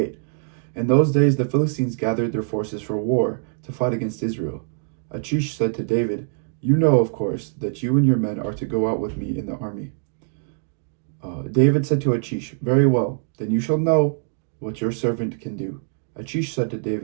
In those days the Philistines gathered their forces for war to fight against Israel. Achish said to David, "You know, of course, that you and your men are to go out with me in the army." David said to Achish, "Very well, then you shall know what your servant can do." Achish said to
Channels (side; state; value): left; silent; digital silence